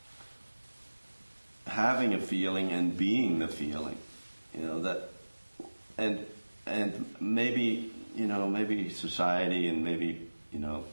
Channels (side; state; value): both; inverted; correlation -1.00